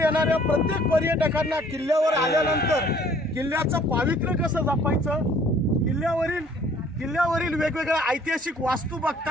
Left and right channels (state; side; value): normal; both; correlation 0.57